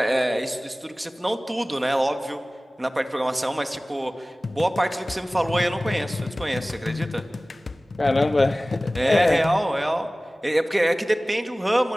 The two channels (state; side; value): normal; both; correlation 0.98